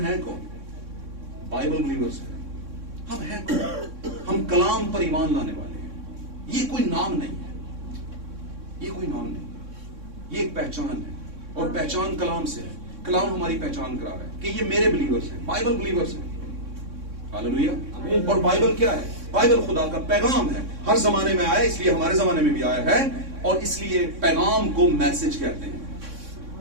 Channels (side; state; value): left; late; 3.6 ms